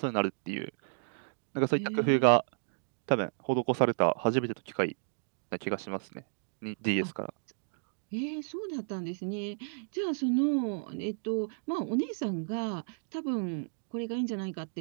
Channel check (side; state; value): left; silent; digital silence